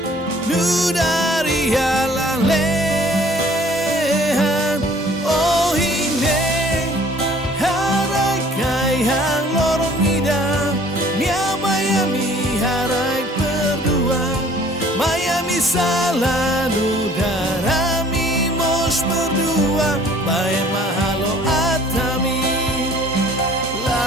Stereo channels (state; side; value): normal; both; correlation 0.54